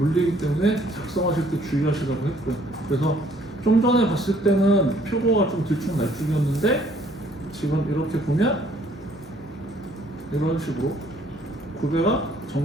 때문에 작성하실 때 주의하시라고 했고요. 그래서 좀 전에 봤을 때는 표고가 좀 들쭉날쭉이었는데 지금 이렇게 보면 이런 식으로 구배가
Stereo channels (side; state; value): both; normal; correlation 0.62